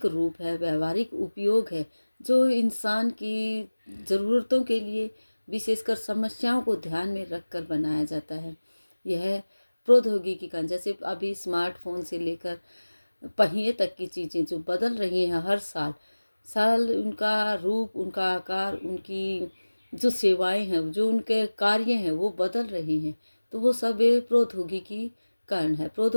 रूप है, व्यवहारिक उपयोग है, जो इंसान की ज़रूरतों के लिए विशेषकर समस्याओं को ध्यान में रखकर बनाया जाता है। यह प्रौद्योगिकी का, जैसे अभी स्मार्टफोन से लेकर पहिए तक की चीज़ें जो बदल रही हैं हर साल उनका रूप, उनका आकार, उनकी जो सेवाएं हैं, जो उनके कार्य हैं, वो बदल रहे हैं। तो वो सब प्रौद्योगिकी कारण है।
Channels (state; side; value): inverted; both; correlation -1.00